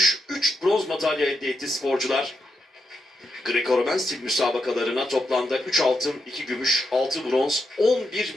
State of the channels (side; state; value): both; normal; correlation 0.84